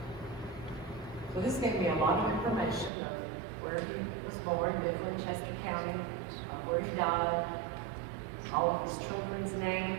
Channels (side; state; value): left; drops out; at 2.9 s